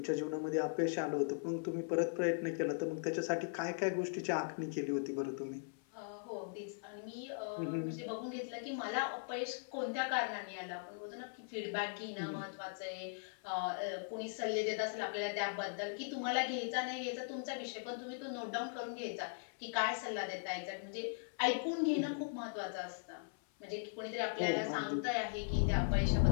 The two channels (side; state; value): right; silent; 52 dB below the other